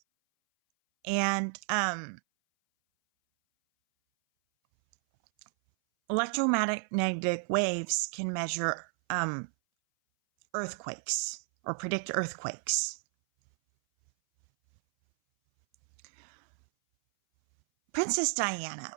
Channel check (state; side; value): silent; left; 57 dB below the other